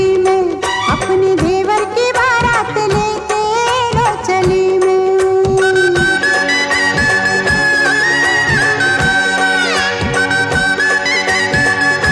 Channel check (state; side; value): identical; both; correlation 1.00